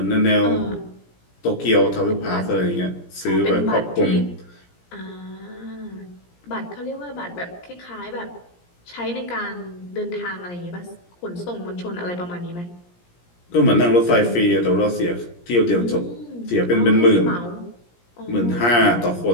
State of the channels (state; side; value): late; right; 17 ms